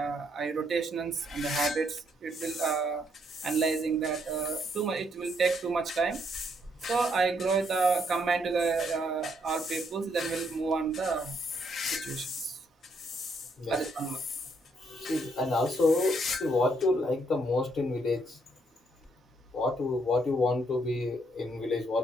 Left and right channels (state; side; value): normal; both; correlation 0.72